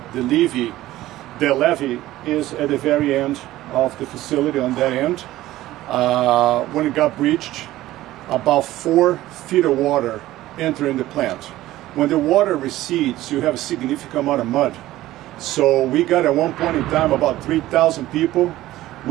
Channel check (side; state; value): left; quieter; 15.7 dB